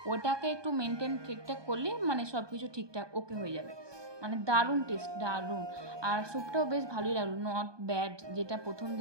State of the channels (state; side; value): late; left; 1.2 ms